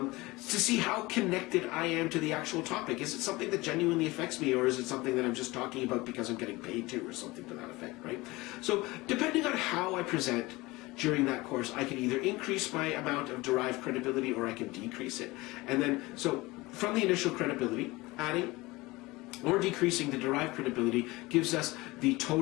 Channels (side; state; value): right; quieter; 21.5 dB